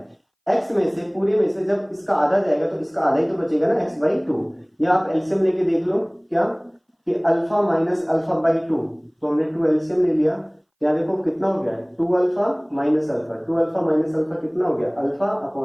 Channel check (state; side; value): identical; both; correlation 1.00